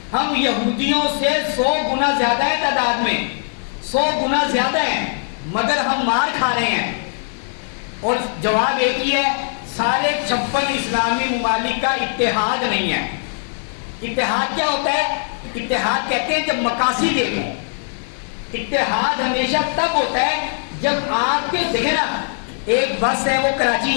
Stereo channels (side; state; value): right; silent; 63 dB below the other